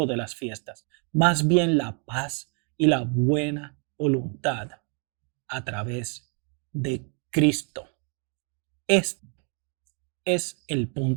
de las fiestas. Más bien la paz y la buena voluntad a través de Cristo. Este es el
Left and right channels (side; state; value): left; quieter; 39.7 dB